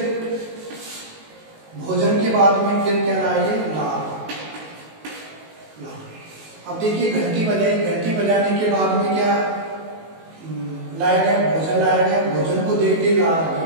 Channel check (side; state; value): left; late; 19 ms